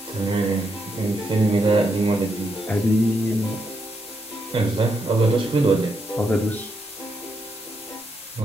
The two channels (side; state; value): both; normal; correlation 0.80